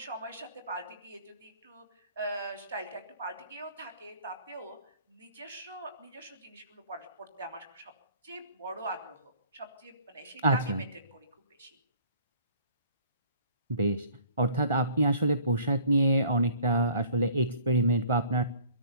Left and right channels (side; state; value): both; inverted; correlation -0.53